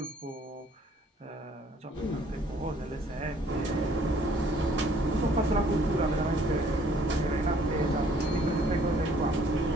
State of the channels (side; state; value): both; normal; correlation 0.60